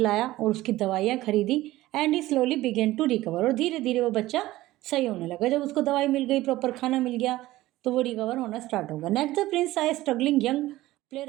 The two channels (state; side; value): quieter; left; 16.7 dB